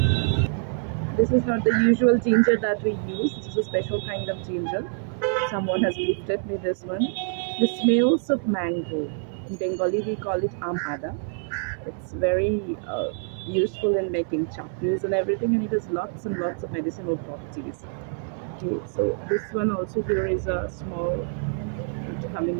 This is not the usual ginger that we use. This is a special kind of ginger. Someone has gifted me this one. The smells of mango. In Bengali, we call it amada. It's very useful in making chutneys and everything, and it has lots and lots of medicinal properties. Okay, so this one also here is a small root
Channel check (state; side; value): silent; left; 61 dB below the other